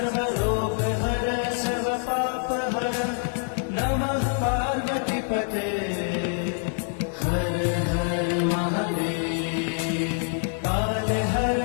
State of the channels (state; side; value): silent; right; 56 dB below the other